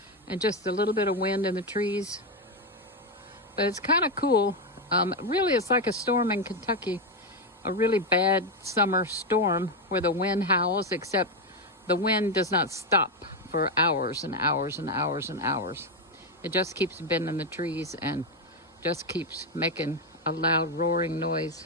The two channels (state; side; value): normal; both; correlation 0.07